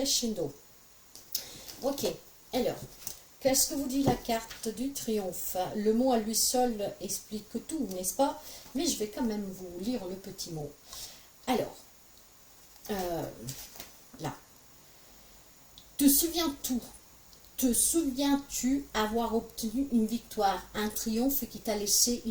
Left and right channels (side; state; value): both; identical; correlation 1.00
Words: Ok. Alors, qu'est-ce que vous dit la carte du triomphe? Le mot à lui seul explique tout, n'est-ce pas? Mais je vais quand même vous lire le petit mot. Alors, là. Te souviens-tu? Te souviens-tu avoir obtenu une victoire, un triomphe qui t'a laissé